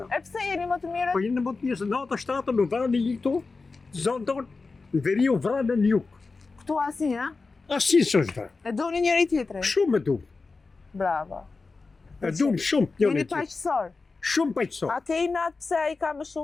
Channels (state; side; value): quieter; right; 4.0 dB